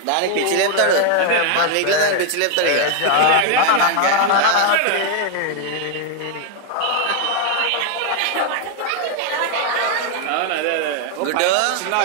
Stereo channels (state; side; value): different; both; correlation 0.00